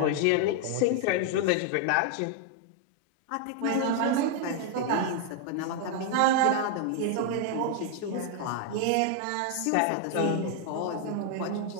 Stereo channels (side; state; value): both; different; correlation 0.00